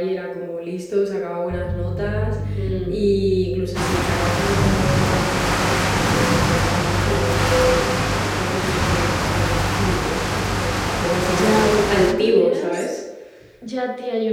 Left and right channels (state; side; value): identical; both; correlation 1.00